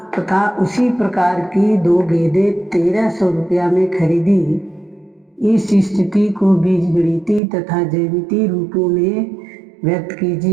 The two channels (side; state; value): left; drops out; at 7.4 s